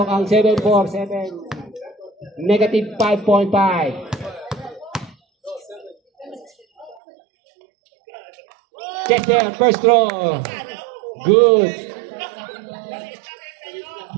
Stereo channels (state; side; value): drops out; left; at 7.0 s